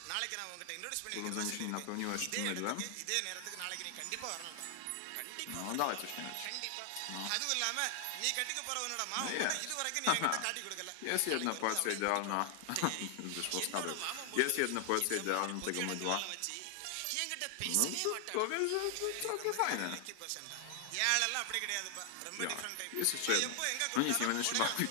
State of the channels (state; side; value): different; both; correlation 0.00